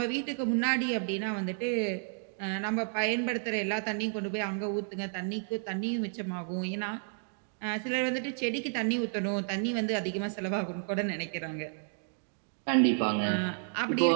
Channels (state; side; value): silent; left; 57 dB below the other